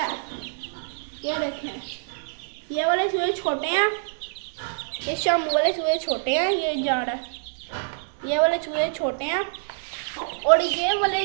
ये देखें, ये वाले चूहे छोटे हैं, ये शामू वाले चूहे छोटे हैं, ये जा रहा है। ये वाले चूहे छोटे हैं और ये वाले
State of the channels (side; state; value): left; silent; digital silence